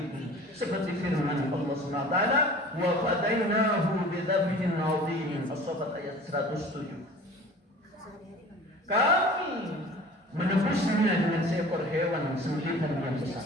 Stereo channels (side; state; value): both; normal; correlation 0.43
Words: Seperti firman Allah Subhanahu wa taala, "Wa fadainahu bidzabhin 'adzim." As-Saffat ayat 107. Kami menebusnya dengan seekor hewan sembelihan yang besar.